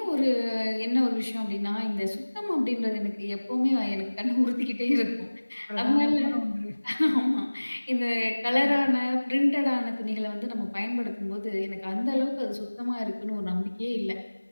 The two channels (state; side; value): inverted; both; correlation -1.00